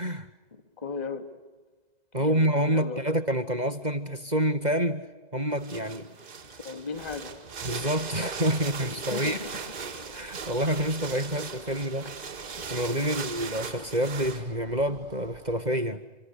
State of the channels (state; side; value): late; left; 2.0 ms